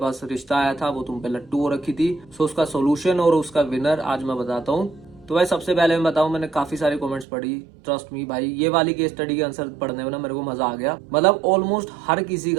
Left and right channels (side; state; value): left; drops out; at 7.2 s